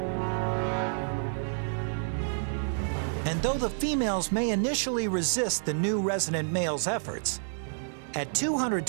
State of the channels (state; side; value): silent; left; digital silence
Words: And though the females may initially resist the new resident male's efforts, at